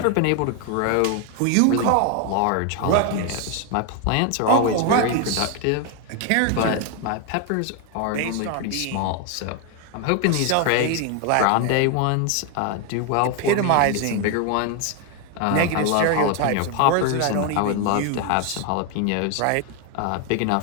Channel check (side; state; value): both; different; correlation 0.01